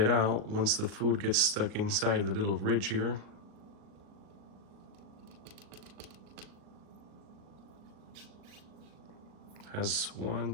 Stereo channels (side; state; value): left; late; 38 ms